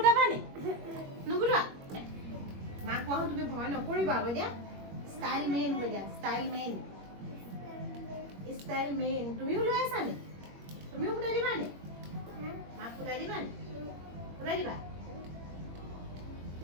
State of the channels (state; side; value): late; left; 21 ms